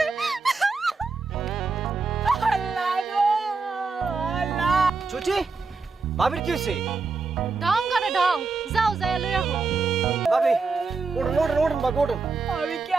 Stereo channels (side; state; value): left; quieter; 4.3 dB